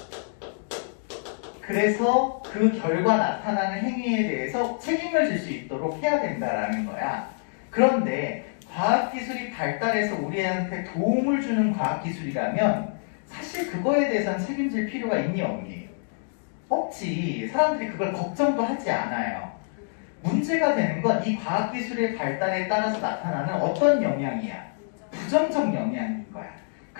그래서 그 결과 나타나는 행위에 대해서 책임을 질 수 있도록 해야 된다라는 거야. 그런데 과학기술이 발달해서 우리한테 도움을 주는 과학기술이라면 사실 그거에 대해서는 책임질 필요가 있니 없니? 없지. 사람들이 그걸 걱정도 하지 않아요. 문제가 되는 건 이 과학기술의 발달에 따라서 나타나는 어떤 영향이야? 부정적 영향인 거야.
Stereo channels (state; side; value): silent; right; digital silence